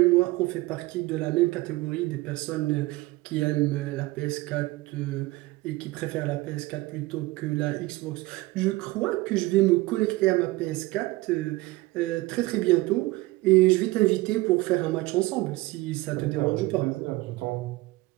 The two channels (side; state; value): left; quieter; 20.3 dB